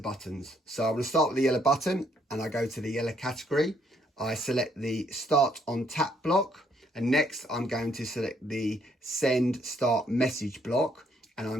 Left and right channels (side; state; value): both; normal; correlation 0.70